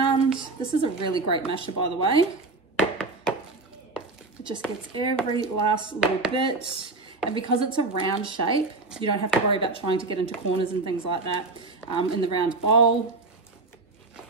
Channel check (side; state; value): left; quieter; 3.5 dB